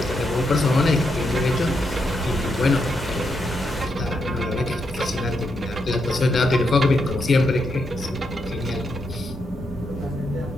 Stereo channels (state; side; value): normal; both; correlation 0.82